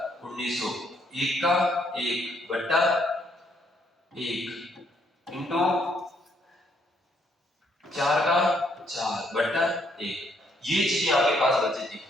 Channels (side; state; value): both; normal; correlation 0.70